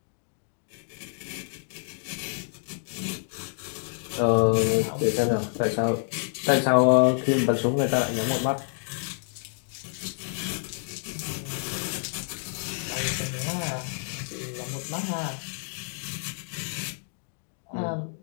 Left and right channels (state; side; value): silent; right; digital silence